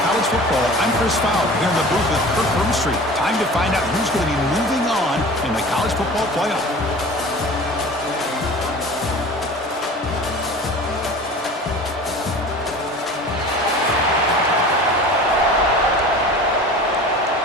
Football, I'm Chris Fowler, here in the booth with Kirk Broomstreet. Time to find out who's going to be moving on in the college football playoff.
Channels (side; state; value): both; normal; correlation 0.39